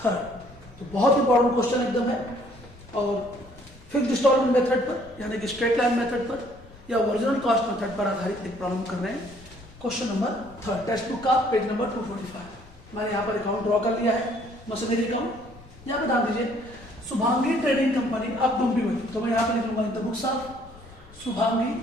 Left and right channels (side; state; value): left; noise; rumble, 22 dB below the sound